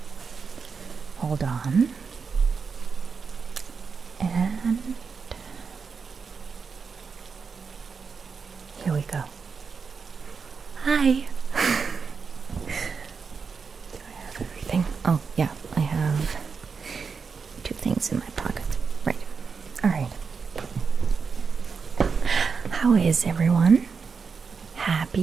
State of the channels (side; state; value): left; quieter; 5.5 dB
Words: Hold on. And here we go. Hi. Do I have everything? Oh, yeah, I have 2 things in my pocket. Right. All right. How is everyone?